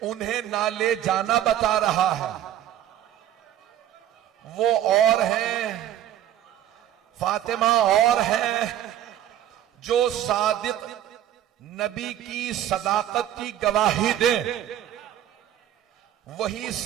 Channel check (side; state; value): left; quieter; 11.7 dB